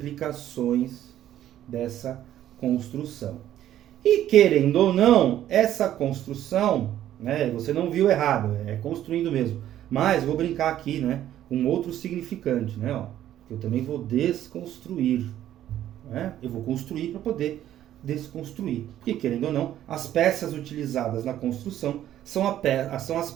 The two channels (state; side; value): quieter; left; 12.0 dB